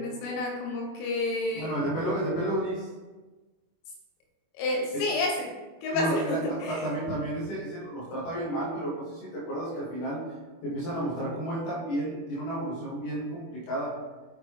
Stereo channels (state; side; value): late; right; 24 ms